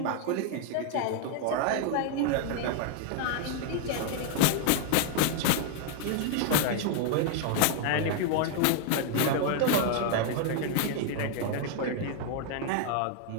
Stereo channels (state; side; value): different; both; correlation 0.00